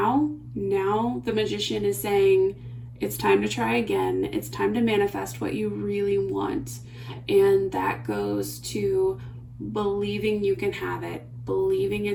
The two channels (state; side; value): identical; both; correlation 1.00